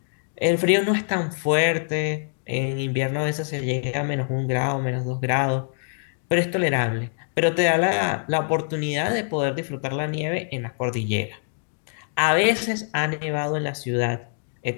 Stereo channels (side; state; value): right; silent; digital silence